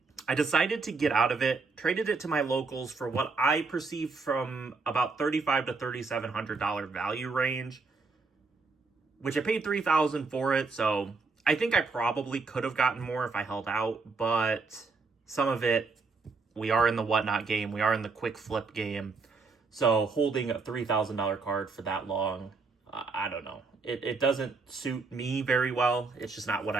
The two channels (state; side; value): quieter; left; 4.2 dB